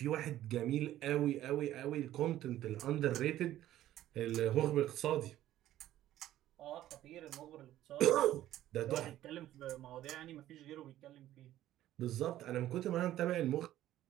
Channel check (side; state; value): left; quieter; 13.4 dB